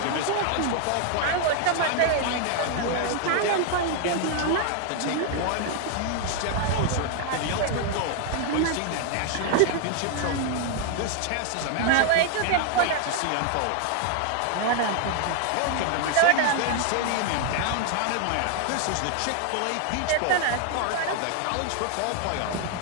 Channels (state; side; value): different; both; correlation 0.00